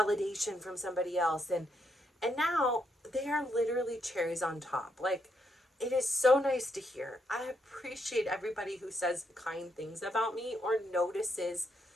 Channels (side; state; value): both; normal; correlation 0.77